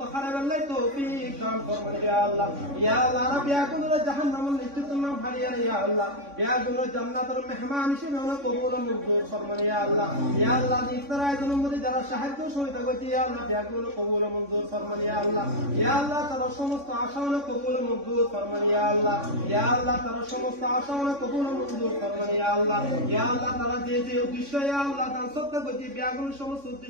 করাবেলাই তৌফিক দান ফরমান ইয়া আল্লাহ রব ইয়া গুনাহ জাহান্নামের লিস্ট তুমি ভারিয়া ইয়া আল্লাহ গুনাহ জান্নাতের মেহমান হিসেবে আমরা কবুল মঞ্জুর ফরমান ইয়া আল্লাহ ইফতার আয়োজনের মধ্যে যারা সাহায্য সহযোগিতা করছে ইয়া আল্লাহ গুনাহ কবুল মঞ্জুর ফরমান ইয়া আল্লাহ তারা সমস্ত আশা কবুল মঞ্জুর ফরমান ইয়া আল্লাহ তারা সমস্ত আশা কবুল মঞ্জুর ফরমান ইয়া আল্লাহ তারা যে যে উদ্দেশ্য ইয়া আল্লাহ দান সত্য করছে গুনাহ সমস্ত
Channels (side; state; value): left; late; 3.6 ms